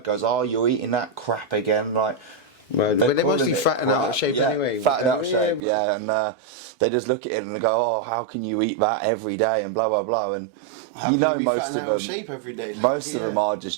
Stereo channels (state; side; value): drops out; left; at 5.6 s